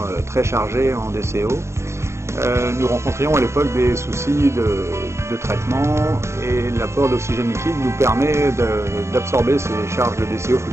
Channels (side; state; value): left; late; 0.13 ms